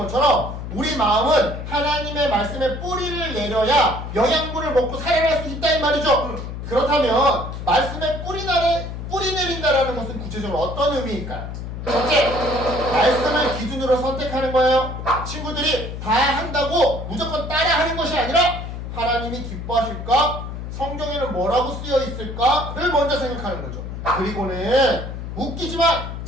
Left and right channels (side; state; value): left; noise; hum, 7 dB below the sound